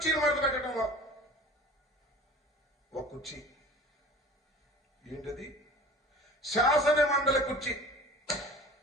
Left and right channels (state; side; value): normal; both; correlation 0.42